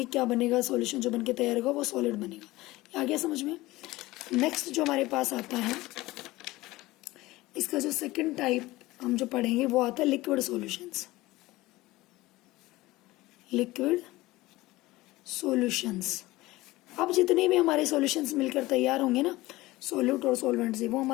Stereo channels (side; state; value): right; quieter; 19.0 dB